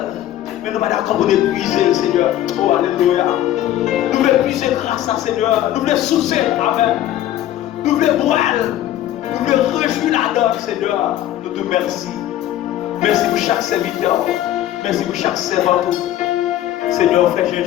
mais nous ne sommes pas d'accord pour nous puiser, Seigneur. Oh, alléluia. Nous voulons puiser grâce à Seigneur. Nous voulons soucier. Amen. Nous voulons boire. Nous voulons réjouir la donne, Seigneur. Nous te remercions. Merci pour chaque serviteur. Merci pour chaque servant. Seigneur, fais-moi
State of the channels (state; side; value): quieter; right; 12.8 dB